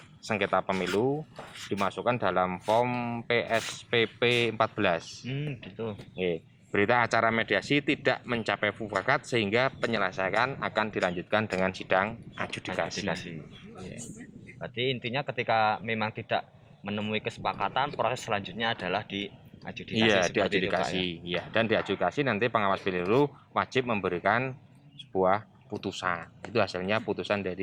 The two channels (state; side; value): identical; both; correlation 1.00